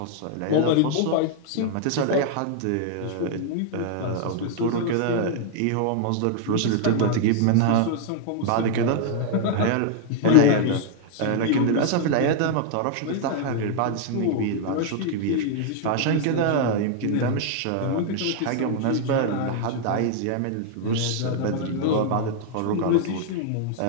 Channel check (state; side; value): different; both; correlation 0.00